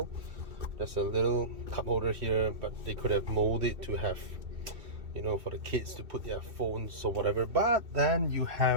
There's a little cup holder here, but they could have molded it to have, you know, for the kids to put their phones or whatever. But then you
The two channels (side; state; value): left; late; 2.6 ms